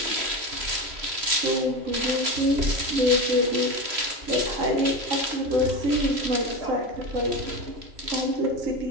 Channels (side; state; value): left; late; 3.0 ms